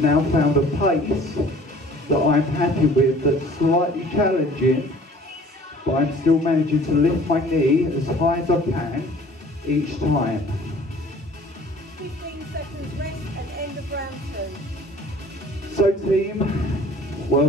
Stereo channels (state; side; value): normal; both; correlation 0.51